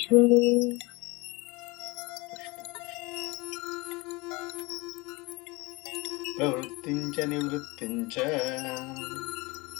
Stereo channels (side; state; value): right; quieter; 24.6 dB